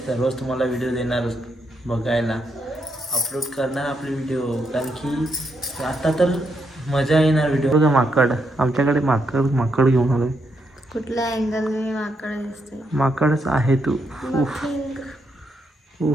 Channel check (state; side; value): normal; both; correlation 0.79